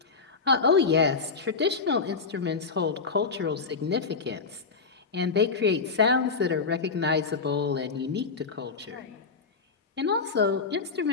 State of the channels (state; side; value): quieter; right; 4.8 dB